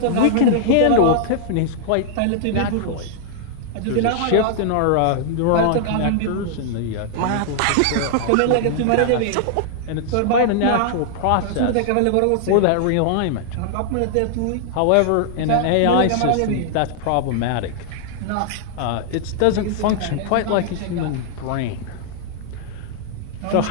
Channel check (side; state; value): both; different; correlation -0.01